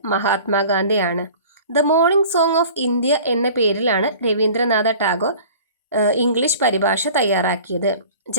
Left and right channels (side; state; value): both; inverted; correlation -0.44